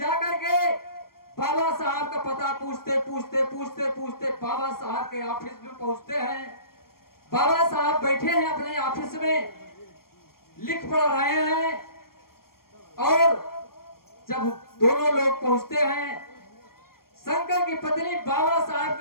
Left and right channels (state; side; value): late; right; 0.93 ms